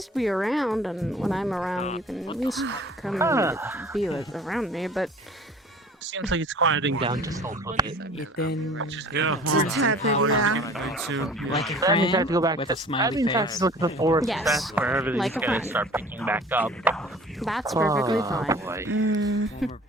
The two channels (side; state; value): both; normal; correlation 0.46